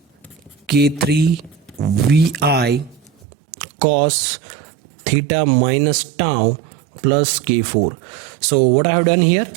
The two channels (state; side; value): drops out; left; at 3.1 s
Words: K3 VI cos theta minus tau plus K4. So what I have done here,